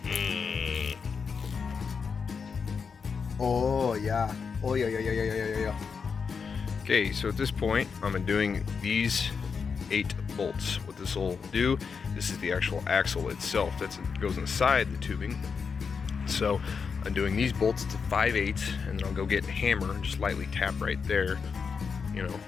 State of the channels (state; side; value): quieter; right; 5.7 dB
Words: Oh yeah. Oh yeah. Okay, so at this point, I'm doing these 8 bolts. What this will do, this is the actual axle itself. That goes inside the tubing. So I'm doing these bolts to 5/8, and then I'll go get a hammer and just lightly tap right there, you know,